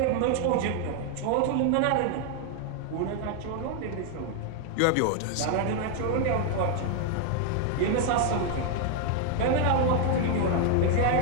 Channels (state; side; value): different; both; correlation 0.00